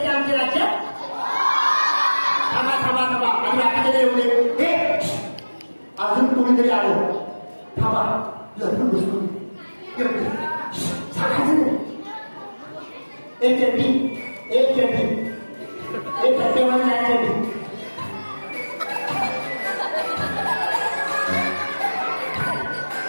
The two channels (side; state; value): both; inverted; correlation -1.00